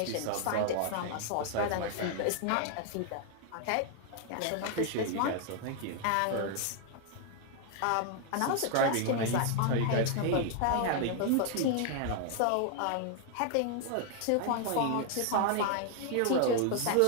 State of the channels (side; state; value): both; different; correlation 0.00